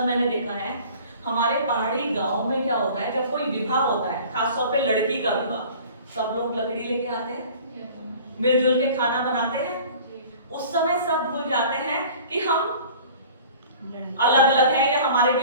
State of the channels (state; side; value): inverted; both; correlation -0.45